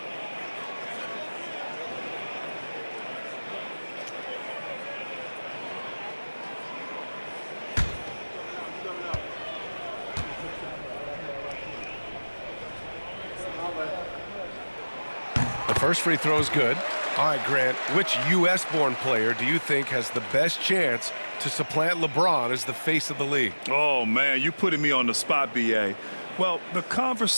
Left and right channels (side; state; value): both; inverted; correlation -1.00